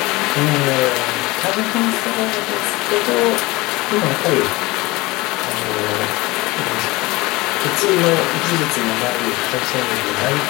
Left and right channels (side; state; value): right; quieter; 21.6 dB